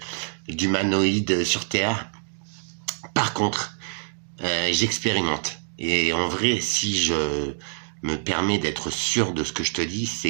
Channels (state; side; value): silent; left; digital silence